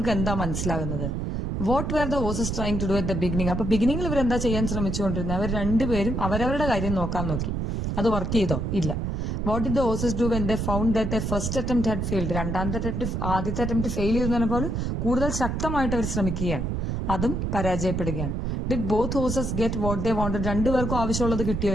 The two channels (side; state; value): right; noise; rumble, 1 dB below the sound